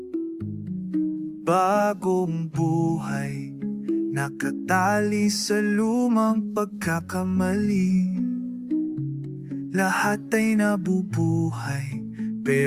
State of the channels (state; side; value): identical; both; correlation 1.00